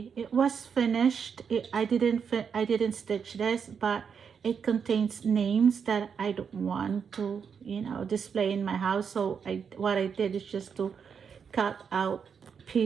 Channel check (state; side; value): quieter; left; 6.7 dB